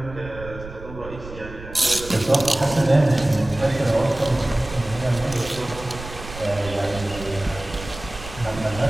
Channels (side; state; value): right; noise; rumble, 13 dB below the sound